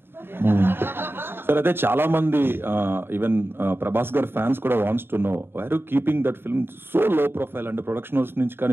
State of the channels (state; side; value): late; left; 0.11 ms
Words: సార్? అయితే చాలా మంది ఈవెన్ ప్రభాస్ గారి ఫ్యాన్స్ కూడా wants to know why are you keeping that film so low profile? అంటే ప్రొడక్షన్ హౌస్ నుంచి